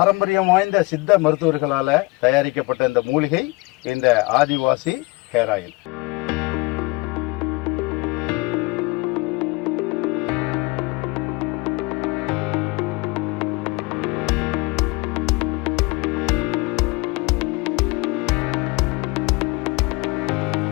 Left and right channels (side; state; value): right; quieter; 25.1 dB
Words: வாய்ந்த சித்த மருத்துவர்களால தயாரிக்கப்பட்ட இந்த மூலிகை இந்த ஆதிவாசி ஹேர் ஆயில்.